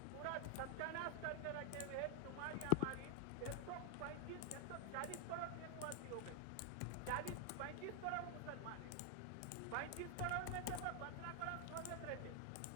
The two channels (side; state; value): both; different; correlation 0.00